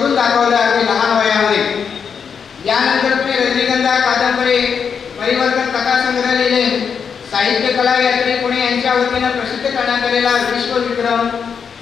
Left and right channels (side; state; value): right; quieter; 6.6 dB